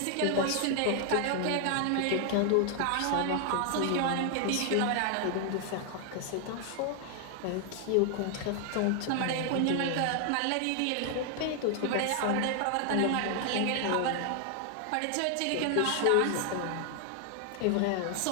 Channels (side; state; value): both; different; correlation 0.00